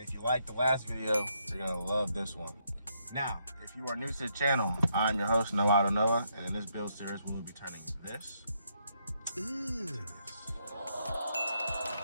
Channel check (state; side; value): inverted; both; correlation -0.77